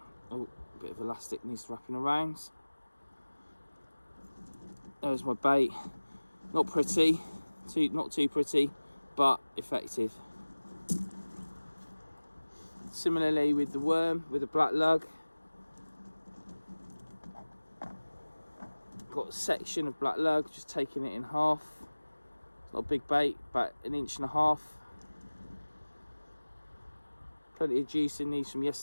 oh, a bit of elastic needs wrapping around. There's my bait. Not pretty, not too pretty, but effective. Similarly with the worm, with the black lug. Got a section of black lug, just taking it in half. It's not a big bait, about 1.5 inches. Plenty of juice in these from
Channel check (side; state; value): both; inverted; correlation -1.00